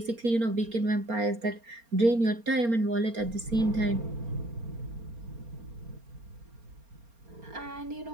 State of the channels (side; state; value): left; late; 4.3 ms